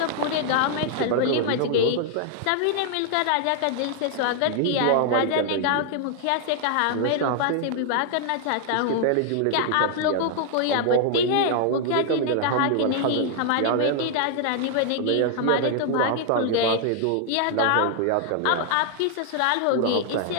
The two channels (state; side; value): different; both; correlation 0.00